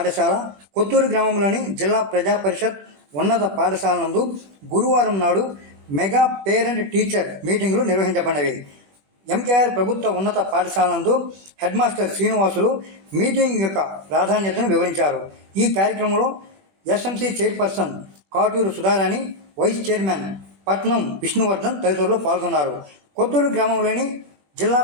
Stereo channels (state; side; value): late; left; 21 ms